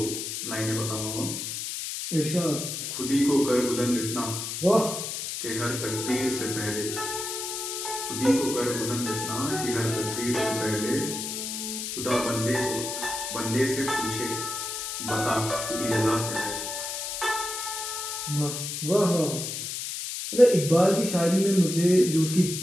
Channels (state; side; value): noise; left; hiss, 5 dB below the sound